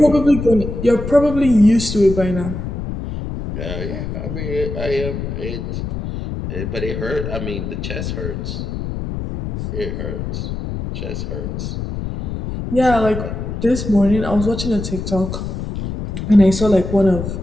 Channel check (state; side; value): noise; left; rumble, 5 dB below the sound